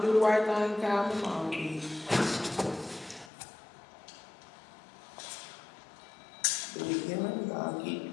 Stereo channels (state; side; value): drops out; right; at 3.3 s